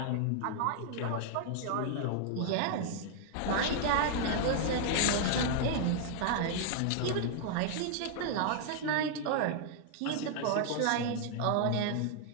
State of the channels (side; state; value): both; different; correlation 0.00